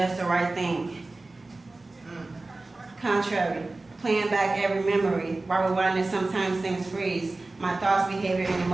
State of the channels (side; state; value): left; quieter; 3.2 dB